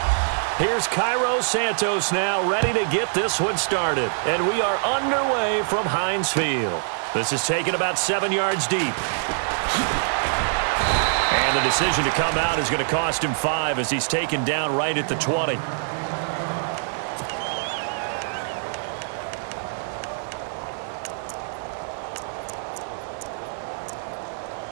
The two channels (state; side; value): silent; left; digital silence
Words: Here's Cairo Santos now ready to get this one started. And we are underway from Heinz Field. This is taken about 7 yards deep. And the decision to come out is going to cost him 5 as he's taken down right at the 20.